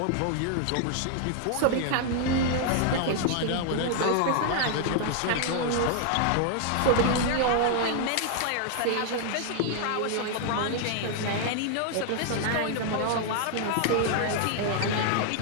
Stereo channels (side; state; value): both; different; correlation 0.00